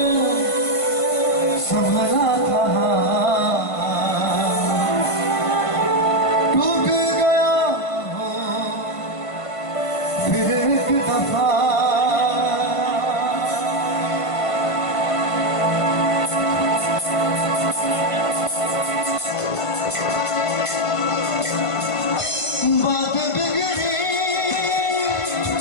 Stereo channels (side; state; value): right; late; 1.5 ms